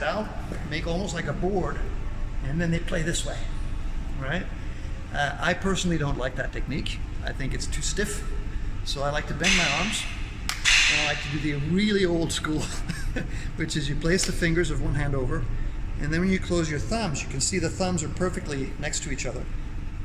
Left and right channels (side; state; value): both; identical; correlation 1.00